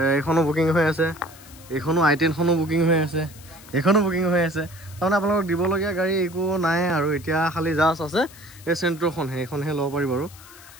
এখনো বুকিং হৈ আছে এখনো i10 খনো বুকিং হৈ আছে এখনো বুকিং হৈ আছে তাৰমানে আপোনালোকক দিবলগীয়া গাড়ী একো নাই আৰু এতিয়া খালি জাষ্ট আছে এই চেন্ট্ৰখন সেইখনহে ল'ব পাৰিব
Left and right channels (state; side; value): noise; left; hiss, 21 dB below the sound